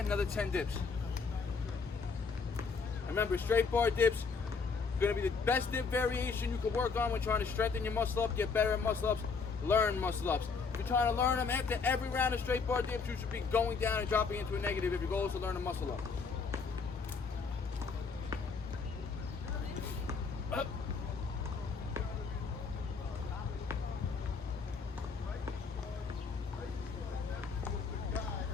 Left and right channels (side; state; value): right; quieter; 5.0 dB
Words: another 10 dips. Remember, straight bar dips gonna be the best dip variation you can work on when trying to strengthen your muscle up, get better at muscle ups, learn muscle ups. If you're trying to learn them after every round of straight bar dips, you should be going down and dropping into a negative if your goal is to learn a muscle up. Up.